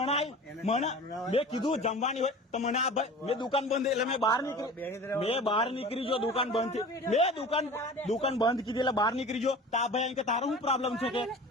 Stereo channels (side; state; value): both; normal; correlation 0.39